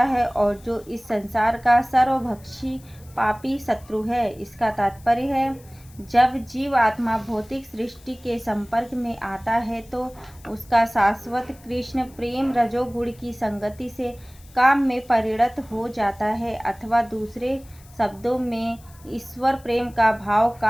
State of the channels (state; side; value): noise; left; hiss, 26 dB below the sound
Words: है और जो इस संसार का सर्वभक्षी पापी शत्रु है। इसका तात्पर्य है, जब जीव आत्मा भौतिक सृष्टि के संपर्क में आता है तो उसका शाश्वत कृष्ण प्रेम रजोगुण की संगति से काम में परिणत हो जाता है, अथवा दूसरे शब्दों में ईश्वर प्रेम का भाव